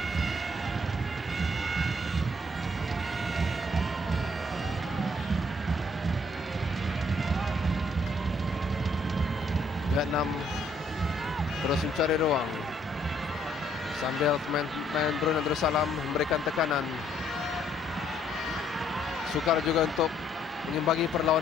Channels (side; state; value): both; normal; correlation 0.67